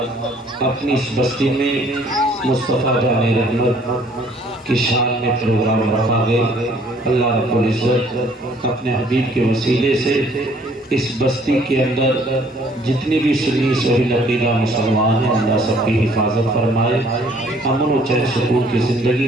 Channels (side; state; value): both; normal; correlation 0.60